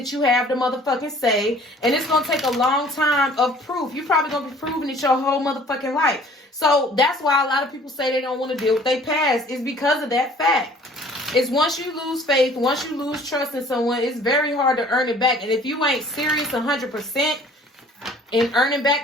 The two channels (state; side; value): normal; both; correlation 0.53